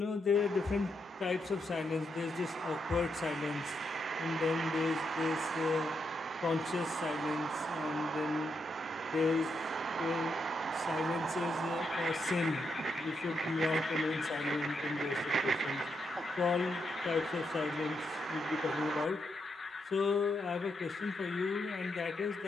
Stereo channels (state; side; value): normal; both; correlation 0.81